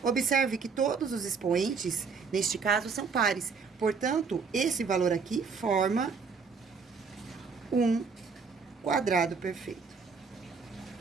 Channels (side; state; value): left; quieter; 5.3 dB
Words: Observe que todos os expoentes, neste caso, são pares. Portanto, esse valor aqui forma um quadrado perfeito.